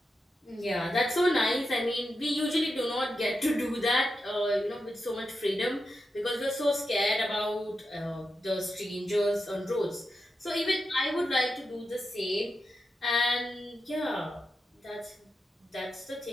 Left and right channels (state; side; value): normal; both; correlation 0.88